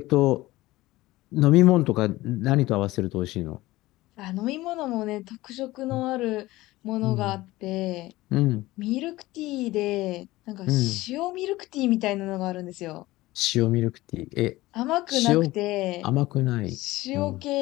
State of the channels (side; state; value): right; quieter; 18.4 dB